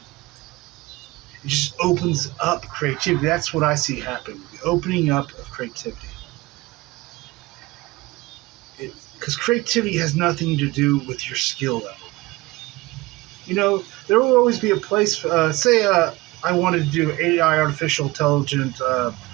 It just opens up creativity. That's what I see happening. The opening up of creativity. Because creativity has nothing to do with your skill level. You know, there will always be a place. Say, I wanted to do AI, artificial intelligent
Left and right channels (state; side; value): quieter; left; 21.1 dB